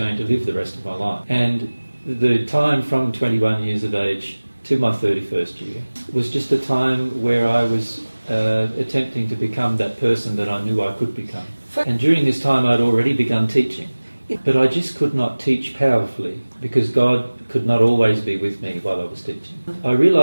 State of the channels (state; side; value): inverted; both; correlation -1.00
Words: to live the rest of my life. And the time from 21 years of age to my 31st year was just a time where I was attempting to become that person that I knew I could become. And during this time I'd already begun teaching, but I just could not teach powerfully because God could not always be with me while I was teaching. I